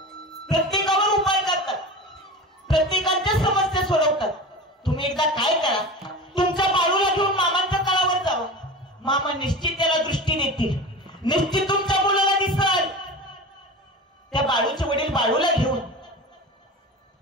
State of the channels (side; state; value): both; normal; correlation 0.31